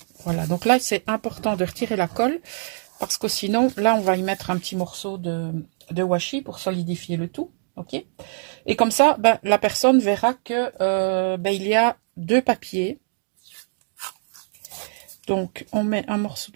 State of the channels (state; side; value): silent; left; digital silence